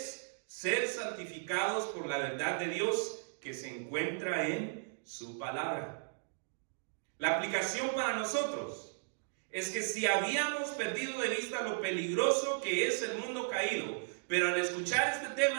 ser santificados por la verdad de Dios que se encuentra en su palabra. La aplicación para nosotros es que si habíamos perdido de vista lo peligroso que es el mundo caído, pero al escuchar este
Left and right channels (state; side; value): silent; left; digital silence